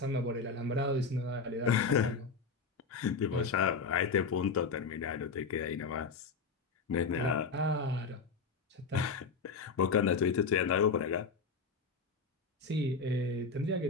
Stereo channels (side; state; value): right; quieter; 4.6 dB